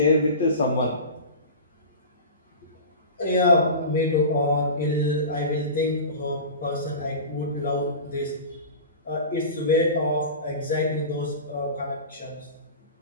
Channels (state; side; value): inverted; both; correlation -0.32